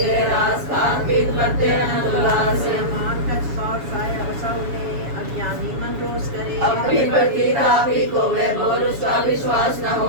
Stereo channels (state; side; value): late; left; 7.2 ms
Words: रास कान पीत करते हैं उल्लास मान कछ और साया बसाउने अज्ञानी मन रोष करे अपनी प्रति तापी को वे बोल उसका विश्वास न